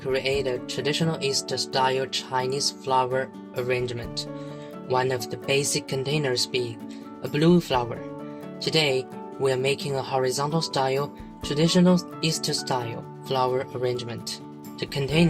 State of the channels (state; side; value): identical; both; correlation 1.00